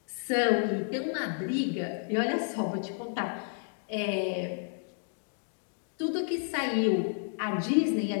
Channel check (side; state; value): right; silent; digital silence